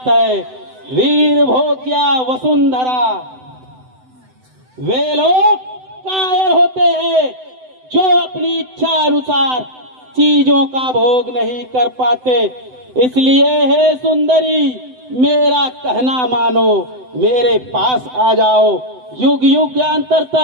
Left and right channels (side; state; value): left; late; 7.9 ms